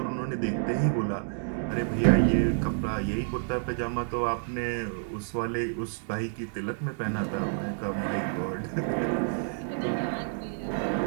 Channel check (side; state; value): left; silent; digital silence